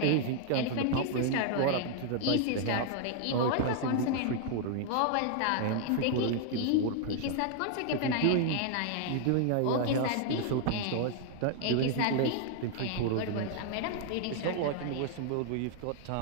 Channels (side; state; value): both; different; correlation 0.00